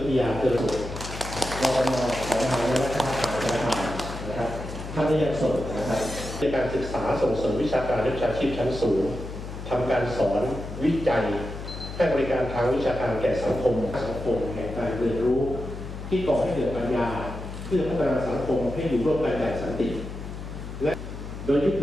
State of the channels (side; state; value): left; noise; hum, 9 dB below the sound